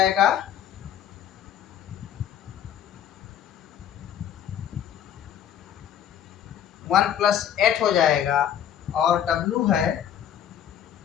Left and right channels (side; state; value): right; quieter; 9.8 dB